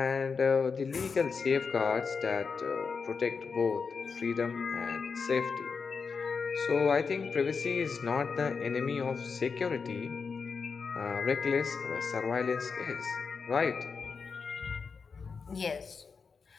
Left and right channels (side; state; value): right; quieter; 5.3 dB